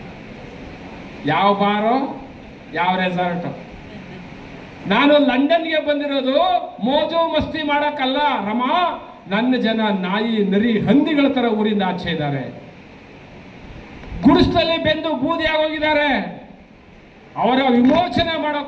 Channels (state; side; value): identical; both; correlation 1.00